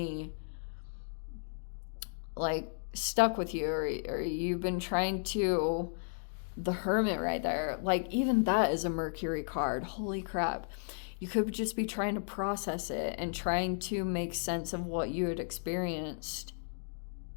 like stuck with you, or you've been trying to, the Hermit right there, like even that is a Mercury card, holy crap. You could just be trying to process it and trying to make sense of what you had experienced,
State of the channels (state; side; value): silent; right; digital silence